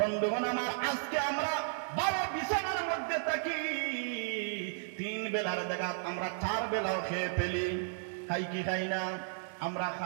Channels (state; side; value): silent; left; digital silence